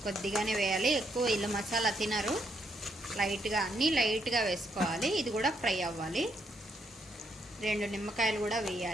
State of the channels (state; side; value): normal; both; correlation 0.76